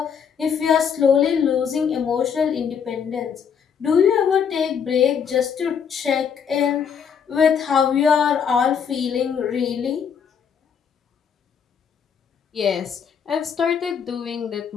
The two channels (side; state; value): right; quieter; 7.2 dB